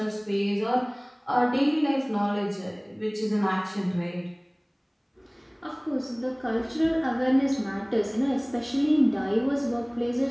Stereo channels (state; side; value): identical; both; correlation 1.00